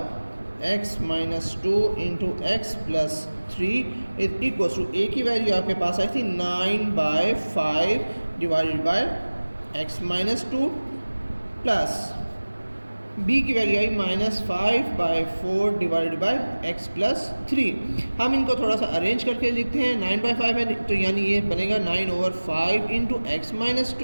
x minus 2 into x plus 3 is equals to a की वैल्यू आपके पास आई थी 9/5 divided by x minus 2 plus b की वैल्यू आई -5/4 डिवाइडेड बाय x प्लस 3। हम इनको थोड़ा सा अरेंज करके लिखते हैं। 9/5 है तो यानी ये बनेगा 9/5 इंटू एक्स माइनस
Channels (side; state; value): both; inverted; correlation -1.00